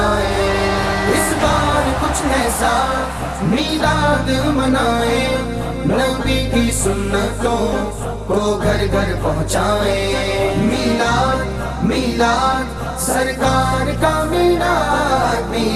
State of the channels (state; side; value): identical; both; correlation 1.00